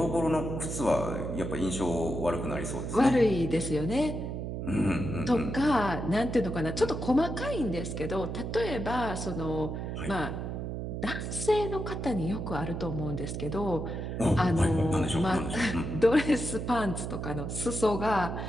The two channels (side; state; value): right; noise; hum, 4 dB below the sound